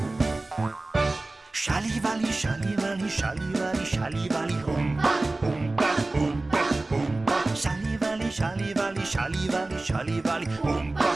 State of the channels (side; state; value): left; quieter; 3.0 dB